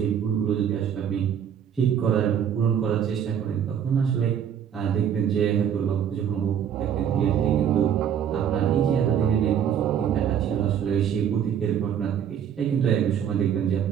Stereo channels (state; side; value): quieter; left; 8.8 dB